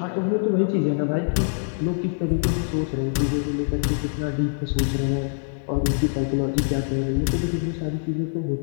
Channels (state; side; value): silent; right; digital silence